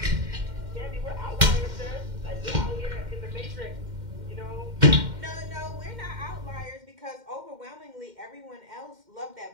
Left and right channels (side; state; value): left; late; 2.1 ms